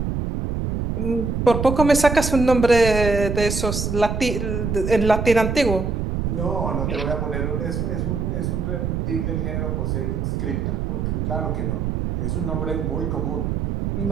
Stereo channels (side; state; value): right; noise; rumble, 1 dB below the sound